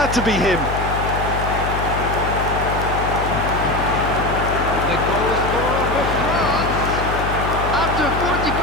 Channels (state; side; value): noise; left; hum, 4 dB below the sound